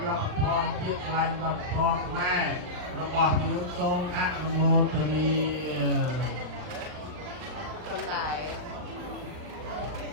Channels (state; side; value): late; left; 39 ms